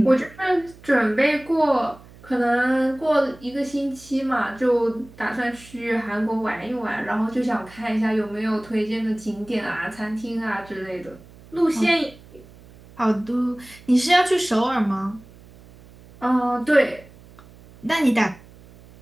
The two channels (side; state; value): right; noise; hum, 22 dB below the sound